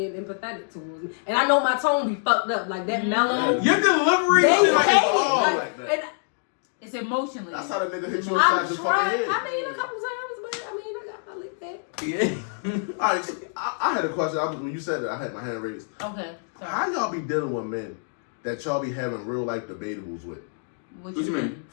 empathetic towards me, and I know my tone be fucked up like that mellow. Your delivery They shit like hate it's it. all like that. And It's emotionally. That's how the nigga hit you I'm inside the fucking trying. head. I mean, a couple times, but I mean, I licked that. Yeah. All right, so I had a question. When you said that, I had my hand raised. Okay. Sorry. How y'all be dealing with men that y'all be having real life debatables with? What you mean?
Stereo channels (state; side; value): silent; right; 61 dB below the other